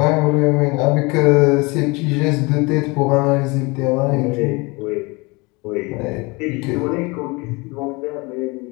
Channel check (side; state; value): right; quieter; 26.1 dB